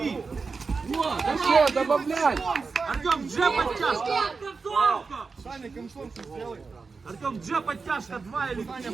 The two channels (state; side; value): quieter; left; 4.6 dB